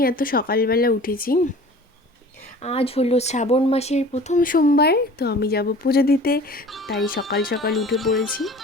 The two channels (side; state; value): both; normal; correlation 0.44